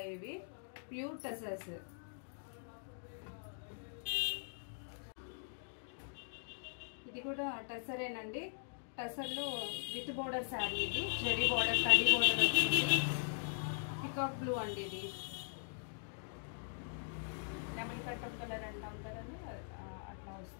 ఇవి ప్యూర్ టసర్స్. ఇది కూడా టసరేనండి. టసర్లో విత్ బోర్డర్ శారీ. ఇది జరీ బోర్డర్, కడ్డీ బోర్డర్ వచ్చింది. పికాక్ బ్లూ అండి. ఇది లెమన్ కట్టం కలర్ అంటాం కదండి, అట్లా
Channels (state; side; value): silent; right; digital silence